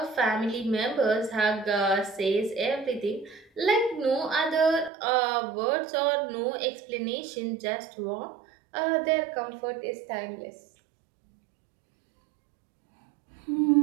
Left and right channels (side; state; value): left; drops out; at 4.9 s